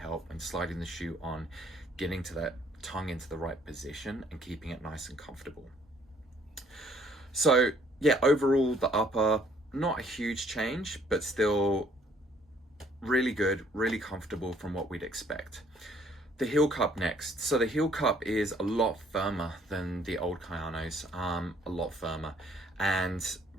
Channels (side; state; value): both; normal; correlation 0.62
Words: in sliding the shoe on, getting to that tongue into the right position and keeping it nice and comfortable. So yeah, overall the upper, not a huge change, but still really good, really comfortable from what we'd expect. The heel cup next. So the heel cup is a lot firmer than the old Kayanos, a lot firmer. And